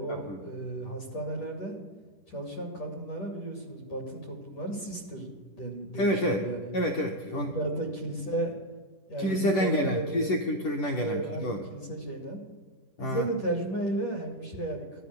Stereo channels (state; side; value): late; right; 10 ms